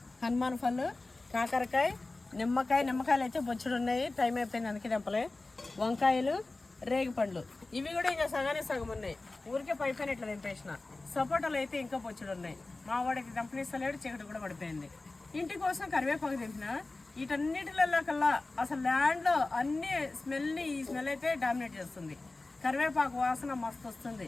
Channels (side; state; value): right; quieter; 3.2 dB